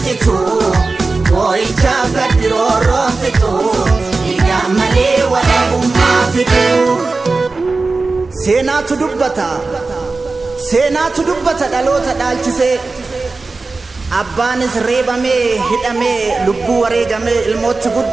jitu boy chaka diroro fito yamale wala bumma fito seenaatu dubbata dhaloota dhaalchise abbaanis reebamee hidhamee lubbuu wareegamee ilmootti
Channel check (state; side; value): quieter; left; 3.8 dB